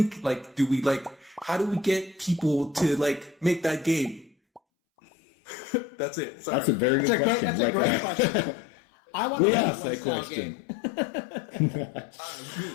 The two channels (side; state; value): right; drops out; at 4.6 s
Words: How do we get people to make that game? That's it. Sorry. That's a very good question. That's a great question. I want to ask that question.